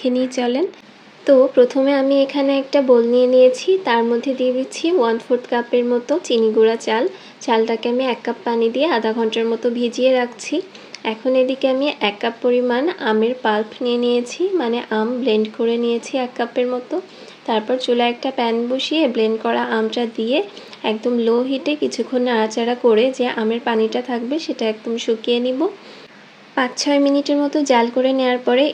নিয়ে চলেন। তো প্রথমে আমি এখানে একটা বোল নিয়ে নিয়েছি, তার মধ্যে দিয়ে দিচ্ছি 1/4 কাপের মতো চিনি গুঁড়া চাল। চালটাকে আমি 1 কাপ পানি দিয়ে আধা ঘন্টার মতো ভিজিয়ে রাখছি। এখন এদিকে আমি 1 কাপ পরিমাণ আমের পাল্প নিয়ে নিয়েছি, মানে আম ব্লেন্ড করে নিয়েছি 1 কাপের মতো। তারপর চুলায় একটা প্যান বসিয়ে ব্লেন্ড করা আমটা দিয়ে একদম লো হিটে কিছুক্ষণ নাড়াচাড়া করে যে আমের পানিটা থাকবে সেটা একদম শুকিয়ে নিব। 5-6 মিনিটের মতো জাল করে নেওয়ার পরে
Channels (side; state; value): both; identical; correlation 1.00